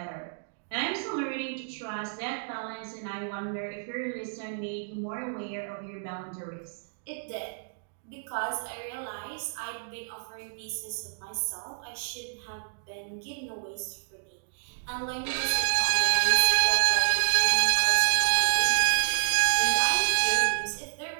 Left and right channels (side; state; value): left; silent; digital silence